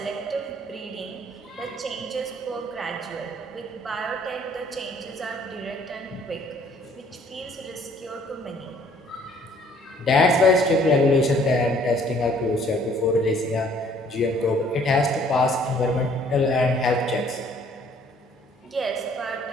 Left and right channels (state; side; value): normal; both; correlation 0.59